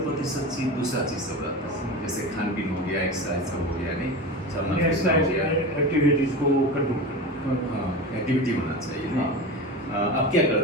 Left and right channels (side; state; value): both; normal; correlation 0.27